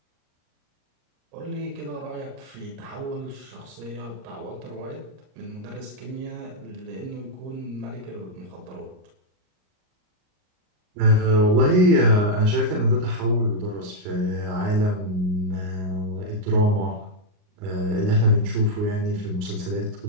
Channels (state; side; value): late; left; 38 ms